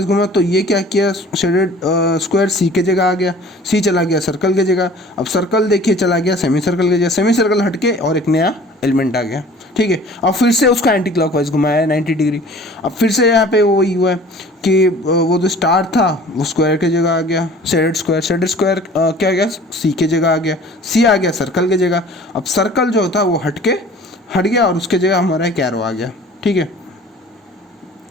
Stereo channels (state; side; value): normal; both; correlation 0.47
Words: घूमा तो ये क्या किया, शेडेड स्क्वायर सी के जगह आ गया, सी चला गया सर्कल के जगह, अब सर्कल देखिए चला गया सेमी सर्कल के जगह, सेमी सर्कल हट के और एक नया एलिमेंट आ गया, ठीक है। अब फिर से उसका एंटी क्लॉकवाइज घुमाया 90 डिग्री, अब फिर से यहाँ पे वही हुआ है कि वो जो स्टार था वो स्क्वायर के जगह आ गया, शेडेड स्क्वायर क्या आ गया, सी के जगह आ गया, सी आ गया सर्कल के जगह, अब सर्कल जो था वो हट गया और उसके जगह हमारा एक एरो आ गया, ठीक है।